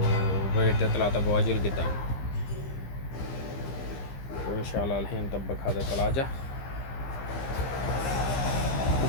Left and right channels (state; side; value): late; right; 15 ms